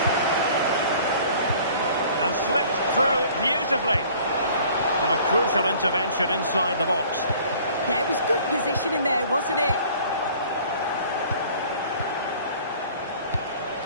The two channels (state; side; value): inverted; both; correlation -0.51